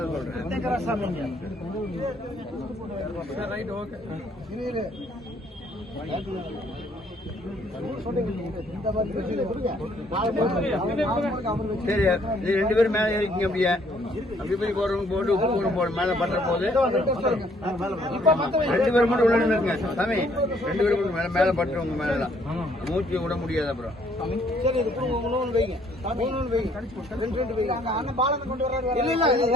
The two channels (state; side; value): normal; both; correlation 0.65